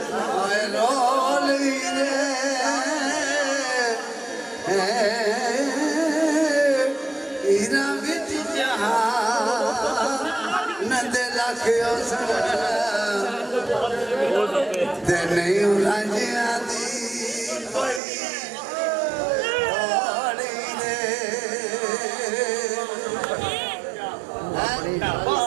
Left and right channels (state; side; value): drops out; left; at 18.0 s